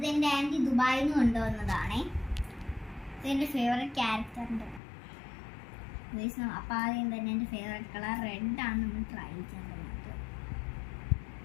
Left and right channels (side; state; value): right; drops out; at 4.8 s